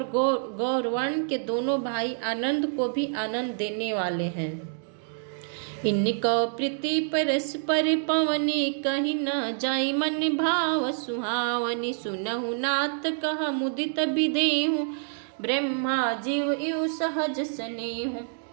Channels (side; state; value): left; silent; digital silence